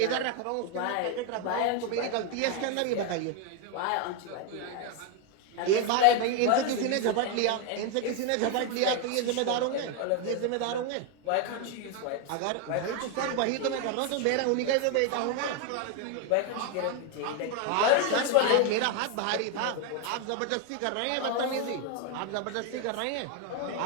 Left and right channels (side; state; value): both; different; correlation 0.01